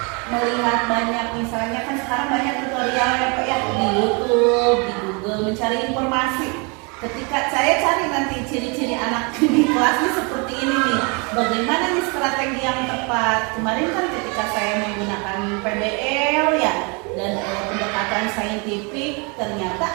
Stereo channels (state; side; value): quieter; left; 32.0 dB